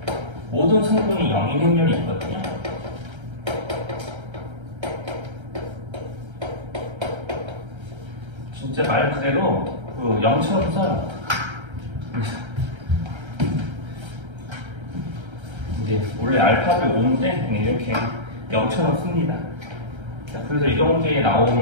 모든 성분이 영인 행렬이 있거든요. 진짜 말 그대로 그 0처럼 써요. 이제 원래 알파벳 5인데 이렇게 0처럼 씁니다. 자, 그래서 이런 게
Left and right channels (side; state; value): left; late; 1.3 ms